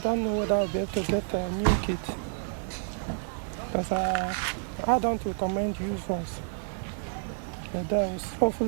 don't know whether I'll be able to get a new kit, because I don't recommend used ones. And then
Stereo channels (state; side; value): silent; left; digital silence